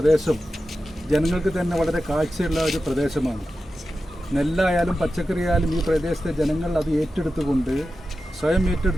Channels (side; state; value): both; normal; correlation 0.92